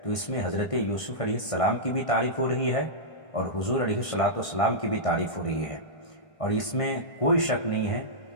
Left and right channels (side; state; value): right; late; 1.5 ms